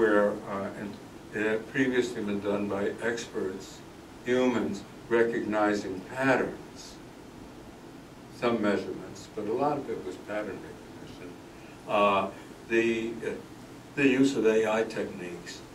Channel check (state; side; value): identical; both; correlation 1.00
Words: it had previously been done by experts, humans, recognizing patterns, some measurements, but a lot of it was pattern recognition. The use of AI techniques